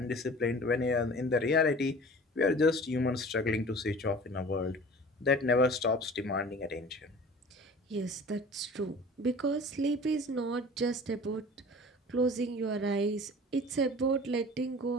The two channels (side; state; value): both; normal; correlation 0.42